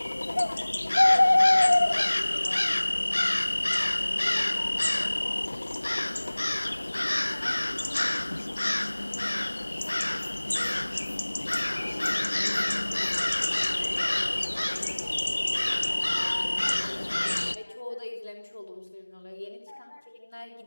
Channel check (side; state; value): both; inverted; correlation -1.00